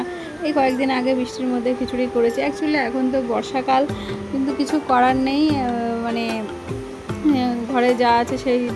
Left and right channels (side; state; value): both; identical; correlation 1.00